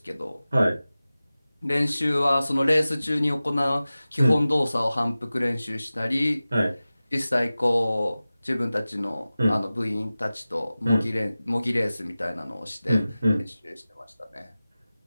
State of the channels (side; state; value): both; inverted; correlation -0.96